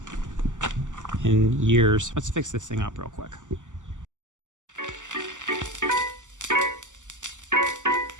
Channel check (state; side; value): late; left; 0.86 ms